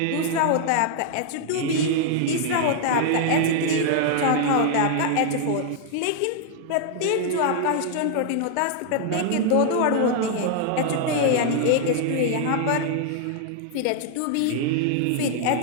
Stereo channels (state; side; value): different; both; correlation -0.01